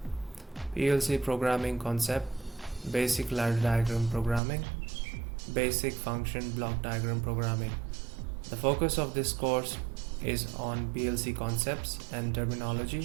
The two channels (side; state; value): left; drops out; at 4.4 s